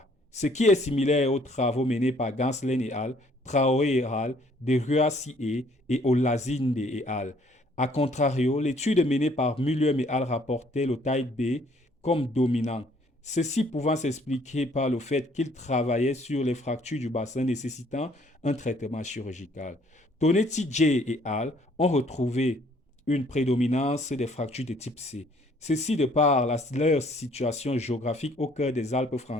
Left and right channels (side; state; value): both; normal; correlation 0.62